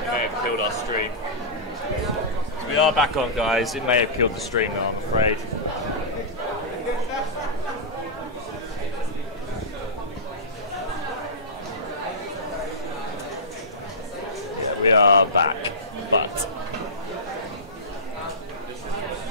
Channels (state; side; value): normal; both; correlation -0.17